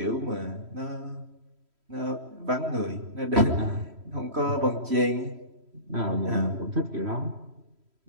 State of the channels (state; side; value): late; left; 3.1 ms